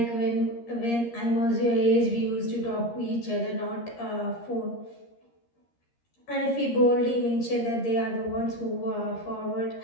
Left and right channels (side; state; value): right; late; 13 ms